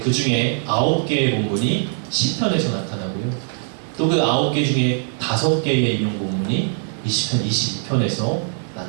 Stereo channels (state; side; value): silent; left; digital silence